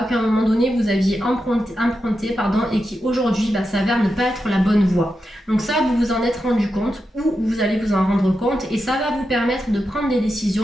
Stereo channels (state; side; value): normal; both; correlation 0.88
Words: qu'à un moment donné vous aviez empruntée et qui aujourd'hui s'avère ne pas être la bonne voie. Donc ça, vous vous en êtes rendu compte ou vous allez vous en rendre compte et ça va vous permettre de prendre des